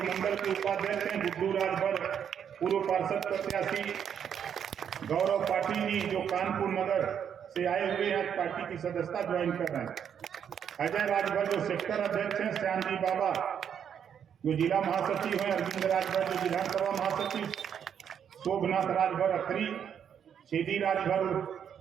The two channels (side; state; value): left; quieter; 8.3 dB